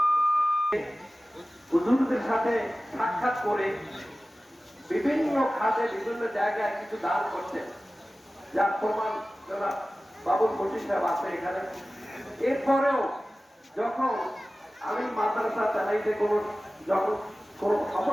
হুজুরদের সাথে সাক্ষাৎ করে বিভিন্ন খাতে বিভিন্ন জায়গায় কিছু দান করছেন, যার প্রমাণ যারা বাবুল বশির সাহেব আছে এখানে। এরপরেও যখন আমি মাদ্রাসা চালাইতে যখন কোনো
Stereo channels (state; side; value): normal; both; correlation 0.96